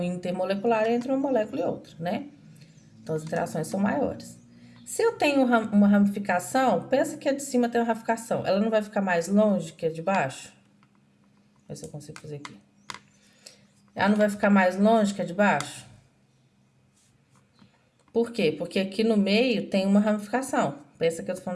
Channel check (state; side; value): identical; both; correlation 1.00